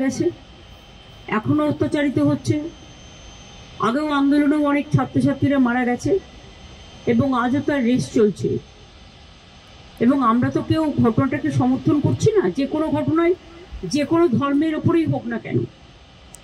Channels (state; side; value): identical; both; correlation 1.00